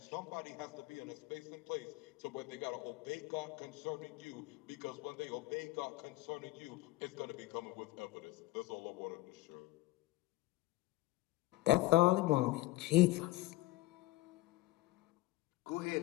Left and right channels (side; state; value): right; quieter; 18.4 dB